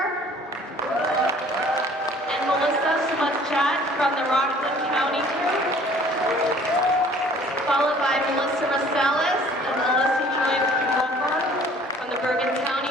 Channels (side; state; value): both; normal; correlation 0.53